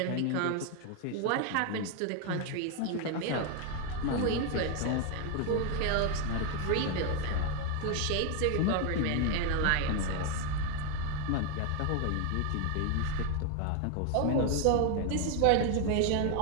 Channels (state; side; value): different; both; correlation 0.01